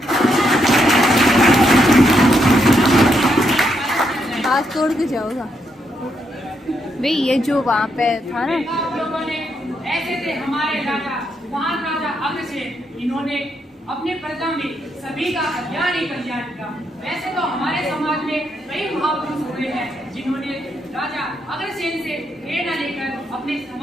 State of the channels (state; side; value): normal; both; correlation 0.78